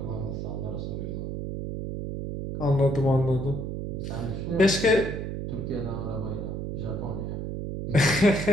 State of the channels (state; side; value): noise; right; hum, 4 dB below the sound